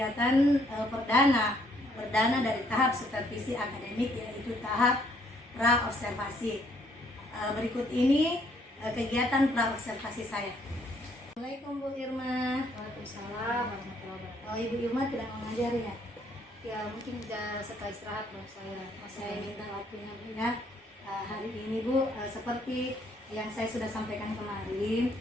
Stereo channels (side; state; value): both; normal; correlation 0.67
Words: perdana dari tahap supervisi akademik, yaitu tahap pra-observasi. Berikut ini kegiatan pra-observasi saya. Assalamualaikum Bu Irma. Waalaikumsalam warahmatullahi wabarakatuh. Oh, Ibu Irma tidak mengajar ya? Ya mungkin setelah istirahat baru Saya minta waktunya Bu ya. Hari ini Bu, seperti yang saya sudah sampaikan kemarin,